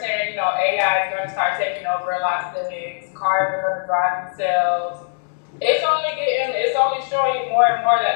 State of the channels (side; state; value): right; silent; digital silence